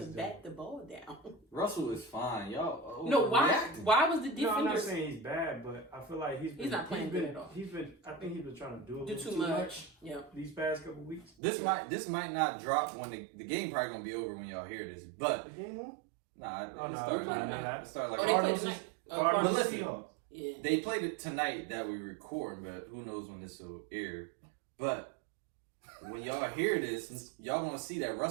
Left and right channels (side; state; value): left; drops out; at 11.3 s